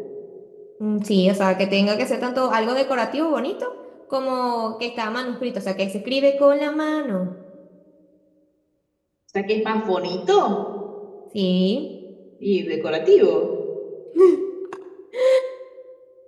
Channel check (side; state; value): both; identical; correlation 1.00